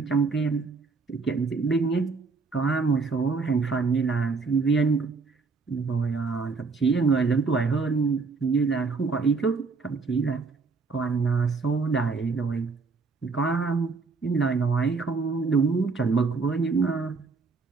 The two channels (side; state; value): left; quieter; 4.5 dB